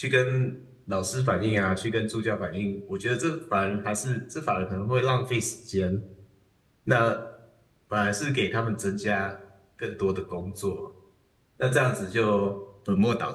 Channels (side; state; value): both; identical; correlation 1.00